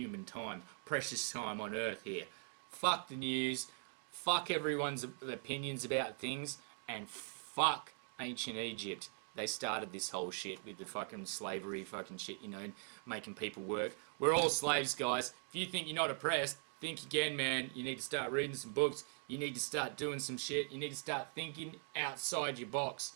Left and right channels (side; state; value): left; silent; 50 dB below the other